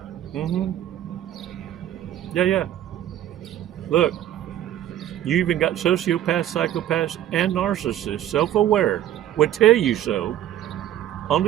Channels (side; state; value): left; quieter; 12.0 dB